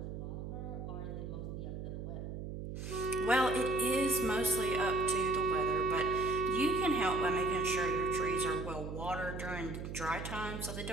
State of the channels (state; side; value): noise; right; hum, 7 dB below the sound